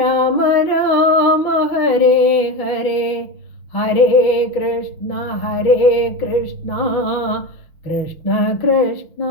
രാമ ഹരേ ഹരേ, ഹരേ കൃഷ്ണ കൃഷ്ണ കൃഷ്ണ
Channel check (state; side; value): late; right; 6.1 ms